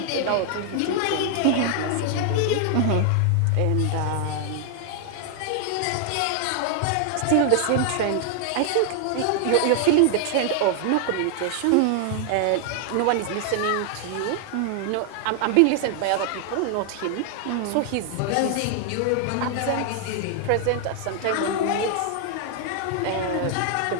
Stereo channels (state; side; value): different; both; correlation 0.00